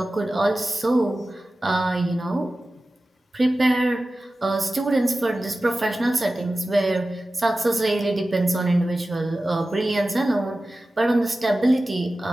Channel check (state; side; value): normal; both; correlation 0.95